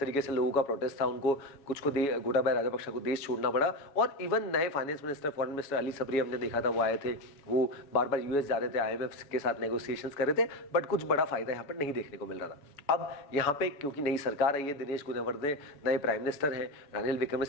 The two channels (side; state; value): right; late; 7.1 ms